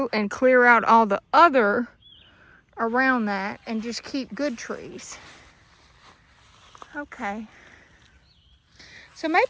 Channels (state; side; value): identical; both; correlation 1.00